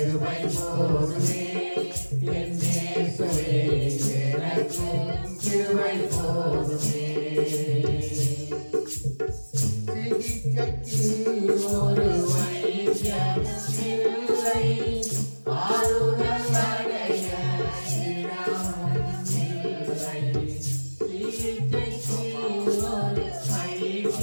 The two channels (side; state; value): both; inverted; correlation -1.00